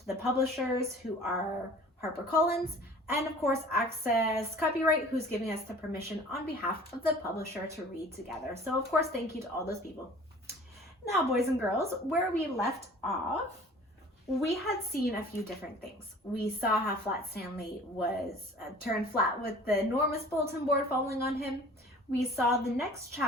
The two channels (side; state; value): both; normal; correlation 0.47